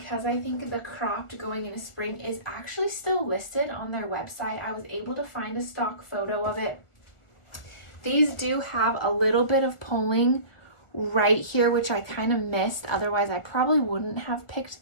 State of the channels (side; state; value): right; late; 1.4 ms